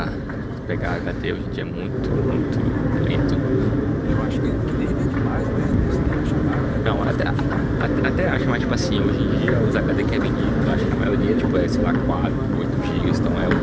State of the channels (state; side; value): identical; both; correlation 1.00